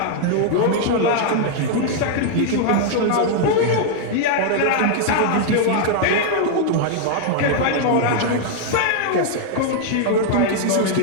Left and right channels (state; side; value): different; both; correlation 0.00